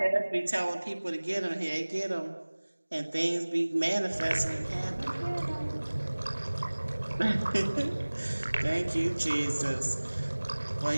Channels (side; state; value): both; inverted; correlation -1.00